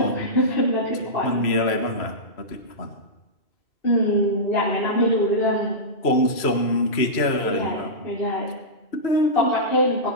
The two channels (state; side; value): late; right; 3.0 ms